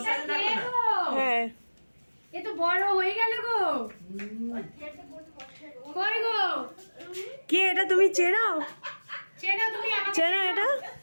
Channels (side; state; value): both; inverted; correlation -1.00